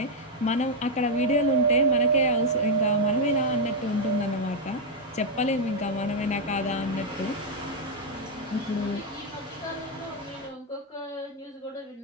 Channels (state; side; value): normal; both; correlation 0.00